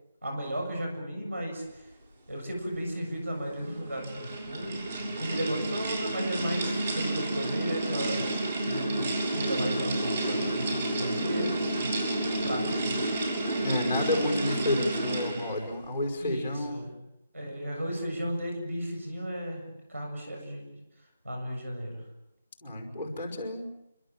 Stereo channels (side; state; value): both; inverted; correlation -0.78